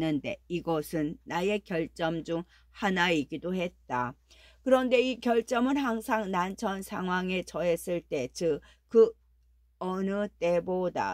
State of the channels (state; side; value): identical; both; correlation 1.00